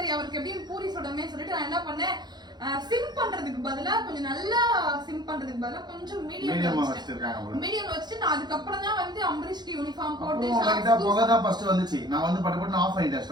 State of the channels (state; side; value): late; left; 0.21 ms